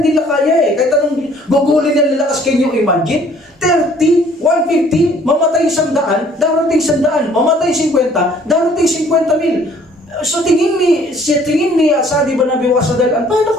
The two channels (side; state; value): both; normal; correlation 0.58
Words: hindi nila kaya eh. Kahit anong gugulin na nila, can you imagine? 30, 150, mamatay 100, darating 100, mamatay 50, darating 50,000. So tingin ni Asad ibn Abi Waqqas radhiyallahu anhu, paano